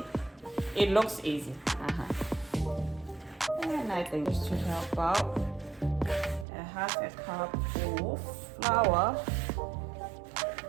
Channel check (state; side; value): drops out; left; at 6.5 s